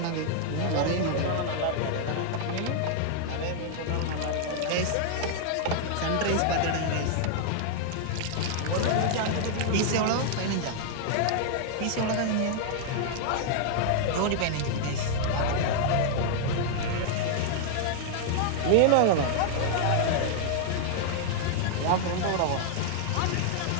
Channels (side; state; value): both; different; correlation 0.00